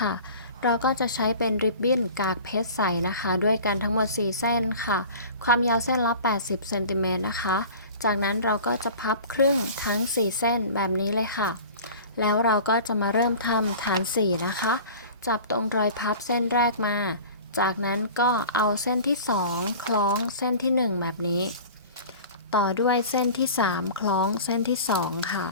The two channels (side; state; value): both; inverted; correlation -0.40